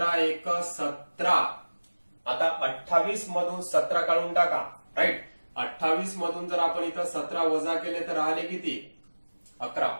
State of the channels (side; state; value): both; inverted; correlation -1.00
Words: एक 17. आता 28 मधून 17 काढून टाका, राईट. 28 मधून जर आपण इथं 17 वजा केले तर राहिले किती, 11.